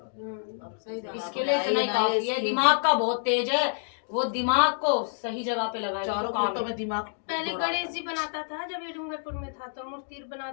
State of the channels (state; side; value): silent; right; digital silence